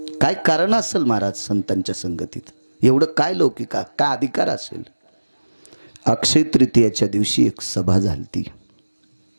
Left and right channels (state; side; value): inverted; both; correlation -1.00